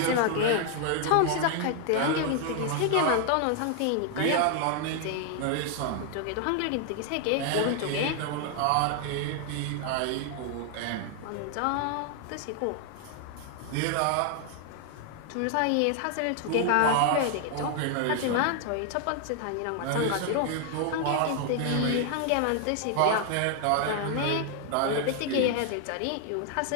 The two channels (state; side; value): different; both; correlation 0.00